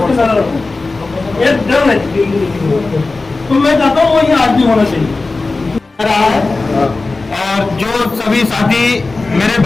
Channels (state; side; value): quieter; right; 3.5 dB